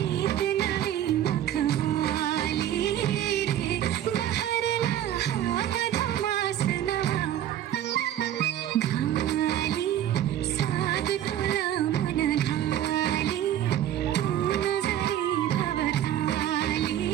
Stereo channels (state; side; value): quieter; left; 11.5 dB